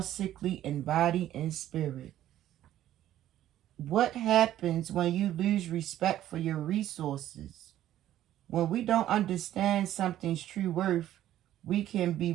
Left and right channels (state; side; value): quieter; left; 12.6 dB